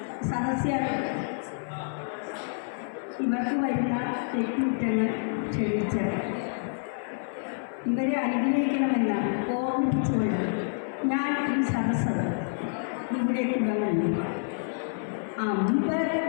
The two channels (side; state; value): right; silent; 59 dB below the other